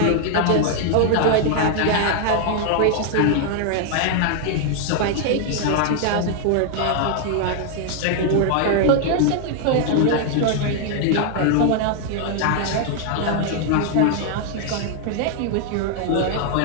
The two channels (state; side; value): different; both; correlation 0.00